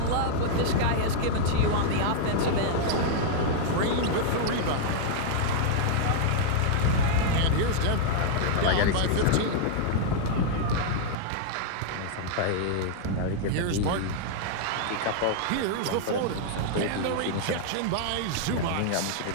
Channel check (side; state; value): both; different; correlation -0.01